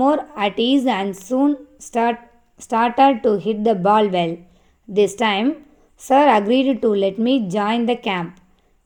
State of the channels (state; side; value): identical; both; correlation 1.00